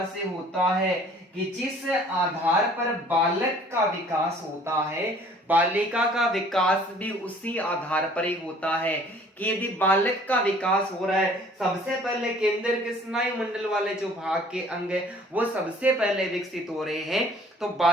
से होता है कि जिस आधार पर बालक का विकास होता है, बालिका का विकास भी उसी आधार पर ही होता है। कि यदि बालक का विकास हो रहा है, सबसे पहले केंद्र के स्नायु मंडल वाले जो भाग के अंग है वो सबसे पहले विकसित हो रहे हैं, तो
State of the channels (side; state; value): both; normal; correlation 0.54